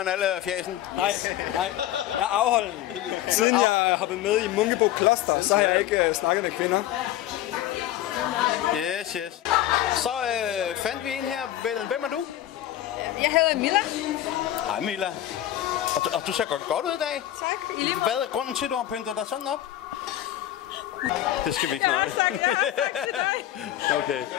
alle fjæsen? Nej. Jeg er afholden. Siden jeg har været med i Munkebo Kloster, så har jeg ikke snakket med kvinder. Yes. Så fandt vi en her. Hvem er du? Jeg hedder Milla. Hej Milla. Og du ser godt ud i dag. Tak. Hvad er grunden til, at du har pyntet dig sådan op? Det skal vi ikke nøje.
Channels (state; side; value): quieter; right; 13.0 dB